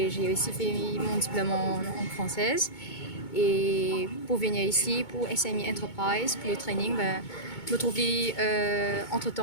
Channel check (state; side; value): late; right; 2.2 ms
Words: j'ai aussi fait mon diplôme en française. Et pour venir ici, pour SME Enterprise, pour le training, je me trouvais